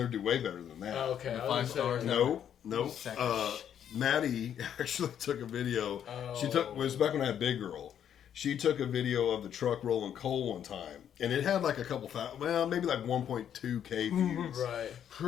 do way better than that. Oh, okay. The I was 5 gonna say- stars. No. Second. Maddie actually took a video. She Oh. took. It was back when I had Big Girl. She took a video of the truck rolling coal one time, and it had like a couple maybe like 1.2K views. Right.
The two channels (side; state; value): right; quieter; 9.4 dB